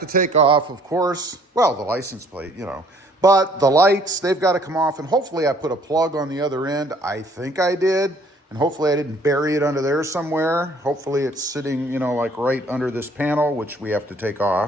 take off, of course, well, the license plate, but the lights, they've got to come off, and hopefully I put a plug on the other end. I think I did, and hopefully I didn't bury it under there somewhere. Hopefully it's sitting, like right under this panel, which we have to take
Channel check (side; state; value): both; normal; correlation 0.59